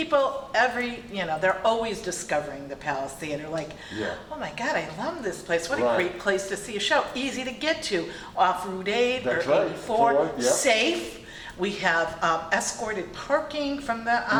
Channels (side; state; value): both; identical; correlation 1.00